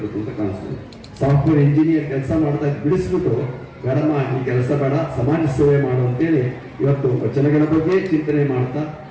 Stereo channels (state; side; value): identical; both; correlation 1.00